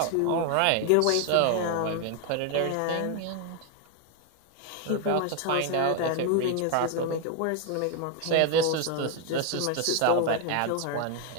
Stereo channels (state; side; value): different; both; correlation 0.01